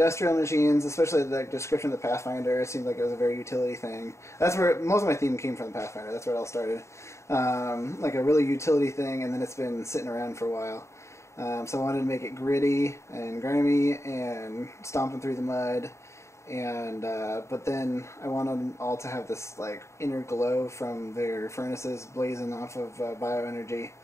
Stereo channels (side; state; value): right; late; 0.14 ms